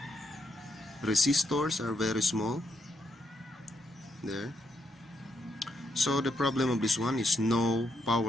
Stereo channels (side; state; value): both; normal; correlation 0.78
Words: resistors are very small there. So the problem of this one is no